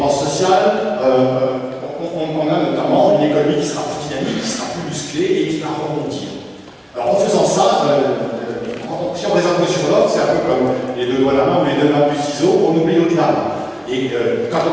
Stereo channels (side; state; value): both; identical; correlation 1.00